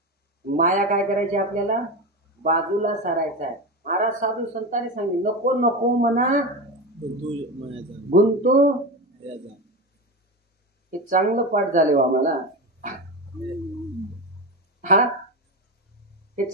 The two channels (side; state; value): both; normal; correlation 0.20